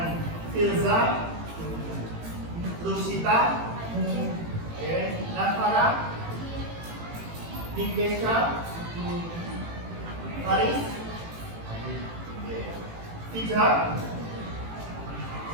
Firza? Lusita? Oke. Nafara? Nikesha? Haris? Tija?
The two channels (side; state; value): left; late; 18 ms